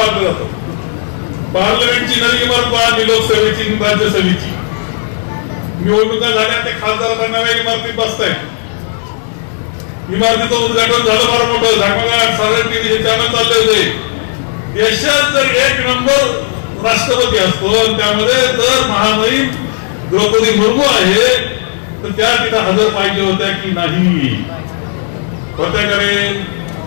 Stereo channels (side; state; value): right; silent; 72 dB below the other